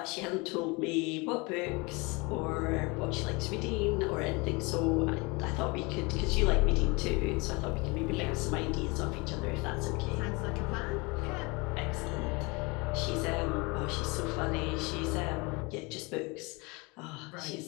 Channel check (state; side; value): quieter; right; 27.1 dB